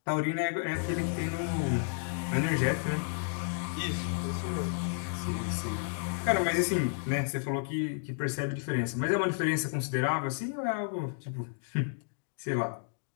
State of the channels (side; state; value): right; silent; digital silence